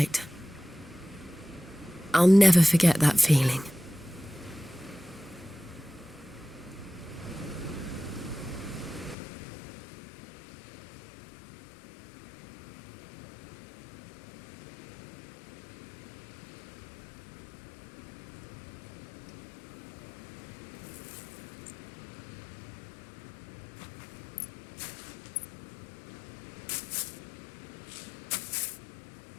I'll never forget that feeling.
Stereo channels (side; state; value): right; drops out; at 9.2 s